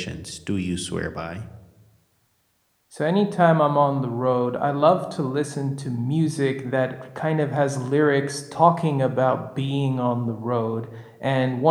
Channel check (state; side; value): identical; both; correlation 1.00